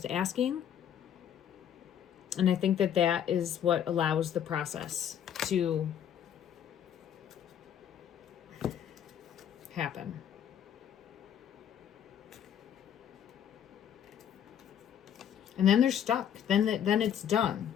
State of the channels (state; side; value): quieter; right; 9.4 dB